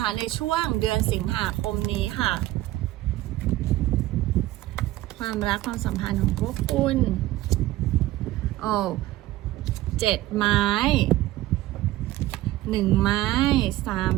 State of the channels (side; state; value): left; quieter; 16.3 dB